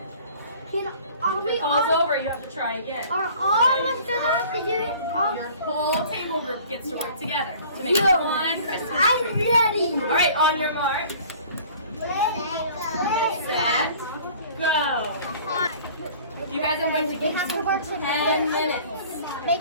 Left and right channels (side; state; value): both; inverted; correlation -0.48